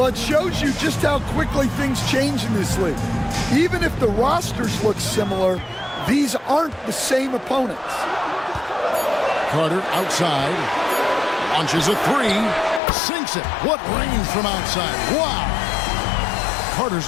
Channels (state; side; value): drops out; right; at 12.8 s